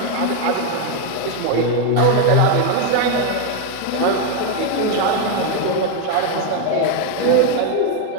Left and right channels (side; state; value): both; different; correlation 0.01